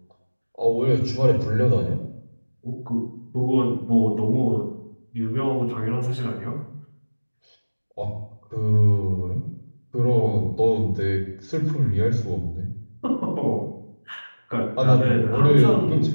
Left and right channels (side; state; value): both; inverted; correlation -1.00